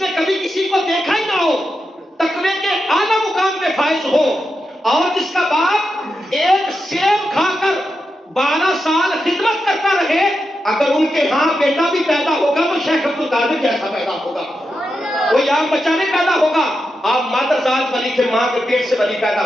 نے کبھی کسی کو دیکھا ہی نہ ہو، تقوی کے اعلیٰ مقام پہ فائز ہو، اور جس کا باپ ایک سیب کھا کر 12 سال خدمت کرتا رہے، اگر ان کے ہاں بیٹا بھی پیدا ہوگا تو شیخ عبد القادر جیسا پیدا ہوگا، کوئی عام بچہ نہیں پیدا ہوگا۔ آپ مادر ذات ولی تھے، ماں کے پیٹ سے ولی پیدا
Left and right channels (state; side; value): normal; both; correlation 0.87